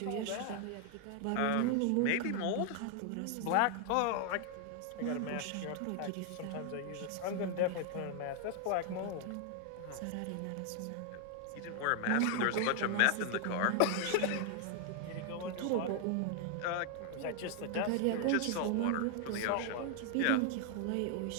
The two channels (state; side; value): different; both; correlation 0.00